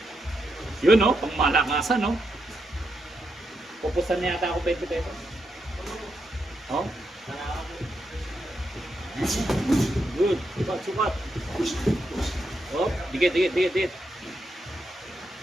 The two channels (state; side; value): normal; both; correlation 0.83